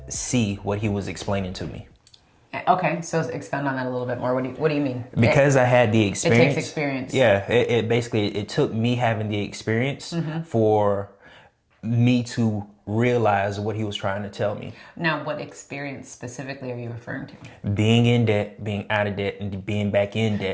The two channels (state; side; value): identical; both; correlation 1.00